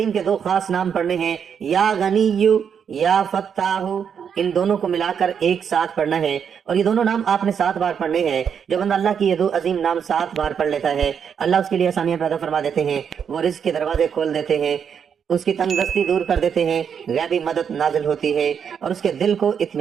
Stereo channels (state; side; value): quieter; left; 7.4 dB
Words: کے 2 خاص نام پڑھنے ہیں، یا غنی یا فتاح، ان دونوں کو ملا کر ایک ساتھ پڑھنا ہے، اور یہ دونوں نام آپ نے 7 بار پڑھنے ہیں۔ جو بندہ اللہ کی یہ 2 عظیم نام 7 بار پڑھ لیتا ہے، اللہ اس کے لیے آسانیاں پیدا فرما دیتے ہیں، وہ رزق کے دروازے کھول دیتے ہیں، اس کی تنگ دستی دور کر دیتے ہیں، غیبی مدد نازل ہوتی ہے اور اس کے دل کو